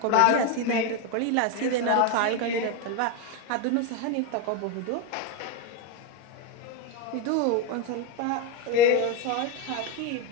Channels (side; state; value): both; different; correlation 0.03